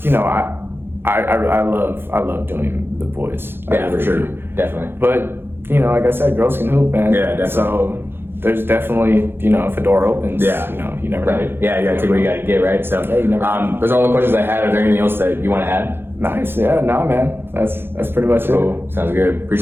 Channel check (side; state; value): left; late; 0.10 ms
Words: you know, I love doing the boys. Yeah, for sure. Definitely. But you know, like I said, girls can hoop, man. Yeah, definitely. So there's definitely, you know, if a door opens, you know, you never know. Yeah, you gotta take what you gotta get, right? So you never those are all the questions I had. Is there anything else that you want to add? Nice. Yeah, no, man. That's pretty much it. Cool. Sounds good.